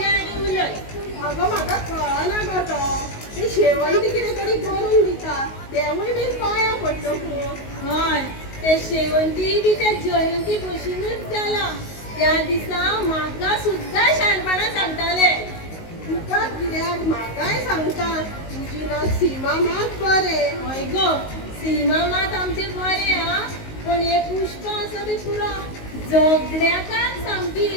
आनी उलय अगो म्हाका कळना गो तो ती शेवंती कितें तरी करून दिता तेवूय बीन पांयां पडटकूच हय ते शेवंती बी त्या जयंती भशेनूच जाला त्या दिसा म्हाका सुद्दां शाणपणां सांगताले तुका कित्याक म्हाकाय सांगता तुजी नात सीमा मात बरें हय गो सीमा मात आमचे बरे हा पण हे पुष्प आसा ते पुरो झगड्याकाच सामकी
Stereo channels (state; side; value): late; right; 19 ms